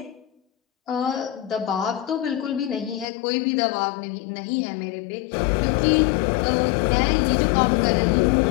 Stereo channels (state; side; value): drops out; right; at 3.1 s